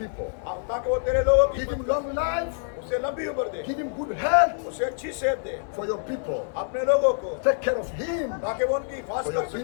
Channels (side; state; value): right; silent; digital silence